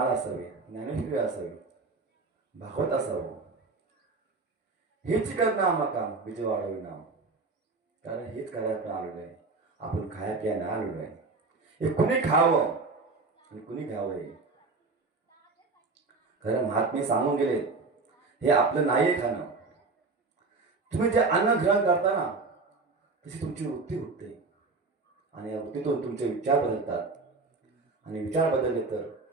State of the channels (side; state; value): left; quieter; 3.9 dB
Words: असावी, ज्ञानेश्वरी असावी, भागवत असावं. हेच करणं आम्हा काम, विजय वाढावी नाम. कारण हेच करायला आलेलं आहे. आपण खाया प्यायला आलेलो आहे. हे कुणी खावं आणि कुणी घ्यावं हे खरं महात्मे सांगून गेले. हे आपलं नाही खाणं. तुम्ही जे अन्न ग्रहण करता ना, तशी तुमची वृत्ती होते, आणि या वृत्तीतून तुमचे विचार बदलतात. आणि विचार बदलले तर